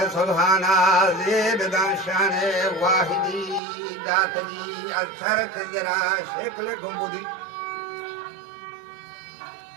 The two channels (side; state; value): left; drops out; at 3.6 s